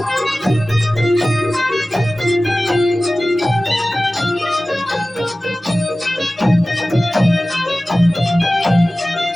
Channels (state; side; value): normal; both; correlation 0.96